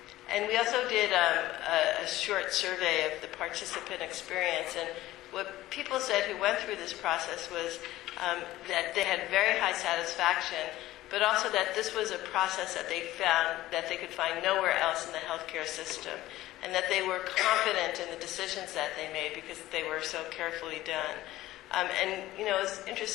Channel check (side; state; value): right; quieter; 15.9 dB